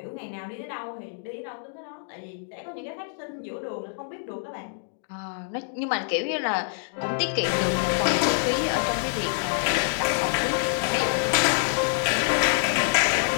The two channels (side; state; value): right; silent; digital silence